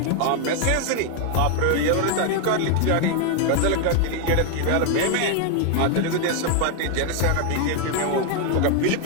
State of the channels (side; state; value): both; different; correlation 0.01